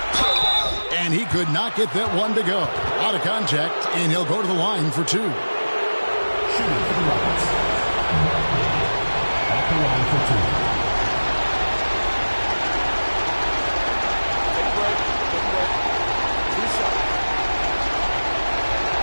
And he could not get that one to go. Out of contact, and he'll go to the line for two. Shooting for the Rockets. At the line for two. Take a break. Take a break. 2 shots.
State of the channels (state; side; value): inverted; both; correlation -1.00